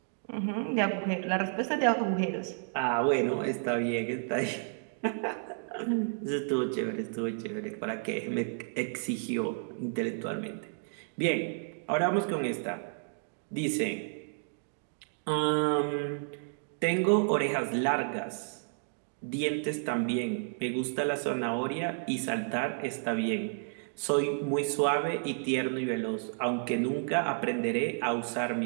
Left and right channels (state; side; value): silent; left; digital silence